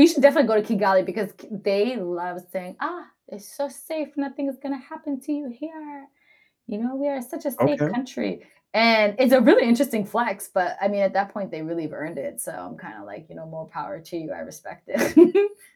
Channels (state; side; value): identical; both; correlation 1.00